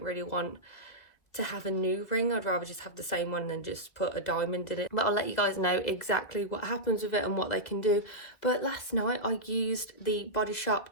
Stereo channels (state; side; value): late; right; 2.0 ms